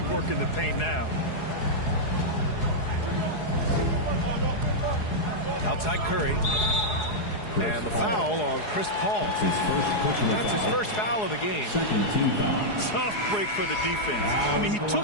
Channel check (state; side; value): late; right; 4.8 ms